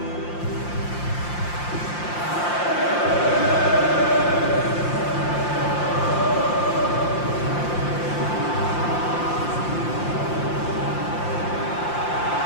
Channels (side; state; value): right; late; 5.7 ms